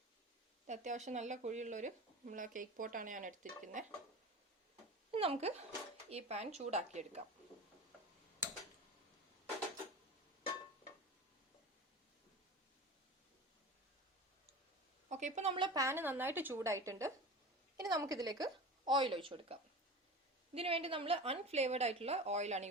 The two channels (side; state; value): both; normal; correlation 0.33